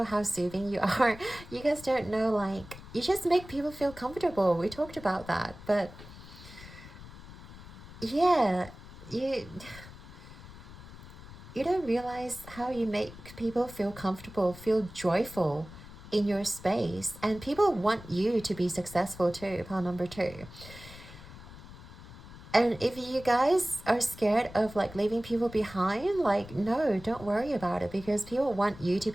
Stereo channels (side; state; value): left; noise; rumble, 16 dB below the sound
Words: how soothing you are. You guys don't know, like, you just make people feel comfortable. We talked about that. But yeah, you don't realize how you make people feel comfortable, feel joyful in your space. And people want you to be successful too, pile number 2. And if you guys are scared of like leaving people behind, like, no, don't worry about it, because people want you to